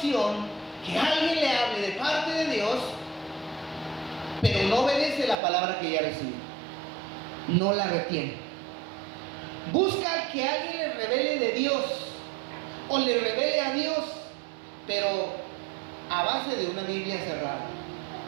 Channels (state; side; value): drops out; left; at 5.4 s